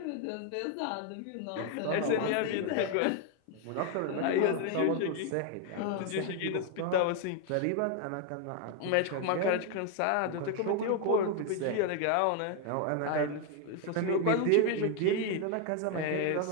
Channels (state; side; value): different; both; correlation 0.00